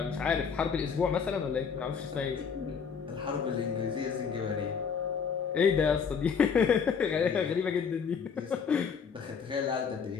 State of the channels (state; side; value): quieter; right; 6.3 dB